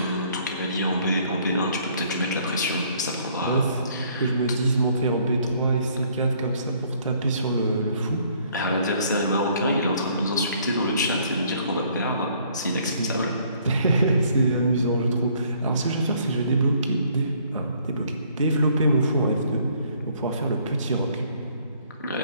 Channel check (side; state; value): both; inverted; correlation -0.62